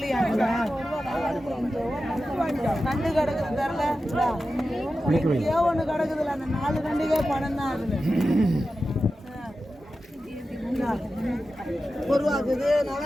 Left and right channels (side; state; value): both; normal; correlation 0.93